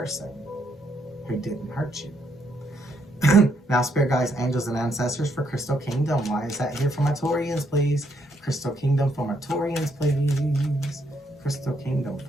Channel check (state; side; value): normal; both; correlation 0.74